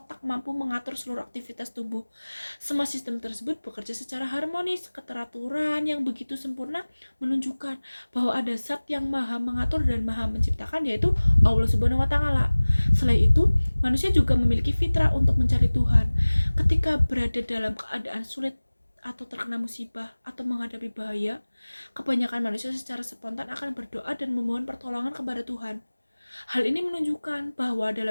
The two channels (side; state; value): both; inverted; correlation -1.00